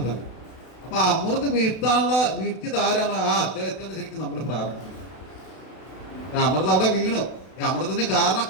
തന്നെ. അപ്പൊ അമൃത് വീഴ്ത്തിയത് ആരാണ്? ആ അദ്ദേഹത്തിന് ശരിക്കും നമ്മൾ പ്രാപിക്കുന്നത്. അമൃത് അവിടെ വീണു. ഈ അമൃതത്തിന്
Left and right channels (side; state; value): right; late; 32 ms